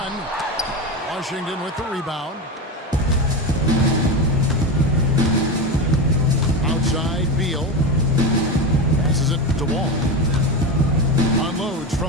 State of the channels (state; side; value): normal; both; correlation 0.19